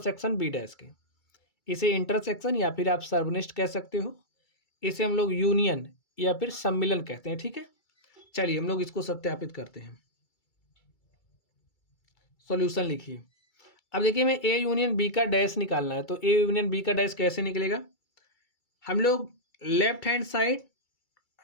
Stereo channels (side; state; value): right; late; 2.3 ms